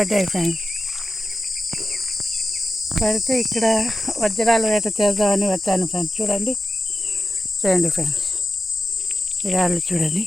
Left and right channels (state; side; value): normal; both; correlation 0.92